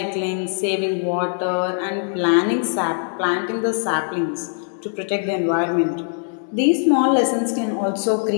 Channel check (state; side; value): silent; right; 65 dB below the other